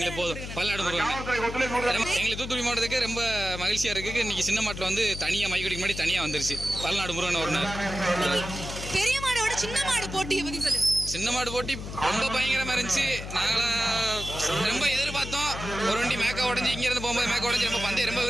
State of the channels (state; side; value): noise; left; hum, 8 dB below the sound